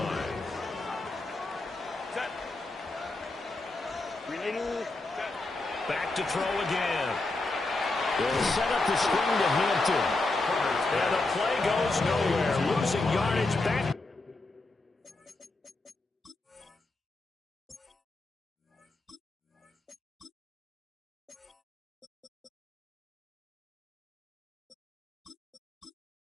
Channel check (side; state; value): right; quieter; 3.1 dB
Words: Back to throw again. They'll set up the screen to Hampton. And the play goes nowhere. Losing yardage back.